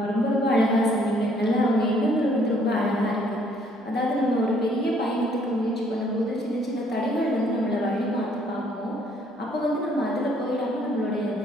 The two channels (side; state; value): both; normal; correlation 0.64